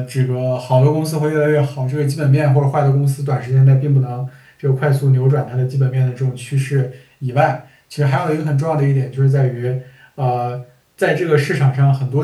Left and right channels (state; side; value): identical; both; correlation 1.00